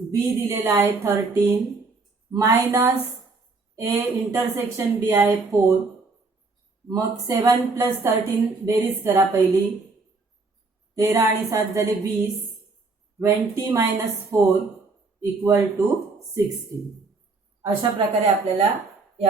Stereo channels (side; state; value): left; quieter; 3.9 dB